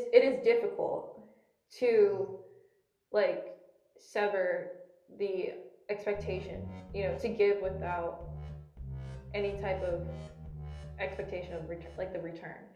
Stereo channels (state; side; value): identical; both; correlation 1.00